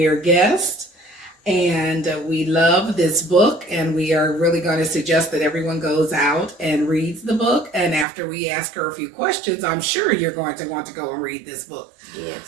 guest. And we love this book, and we are really going to suggest that everyone goes out and reads the book. And after we ask her a few questions, I'm sure you're going to want to go and read this book. Yes.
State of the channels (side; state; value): left; drops out; at 8.1 s